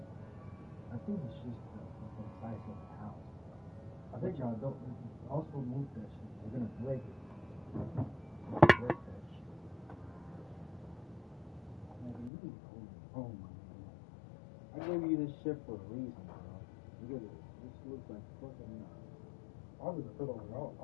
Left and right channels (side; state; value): right; drops out; at 12.3 s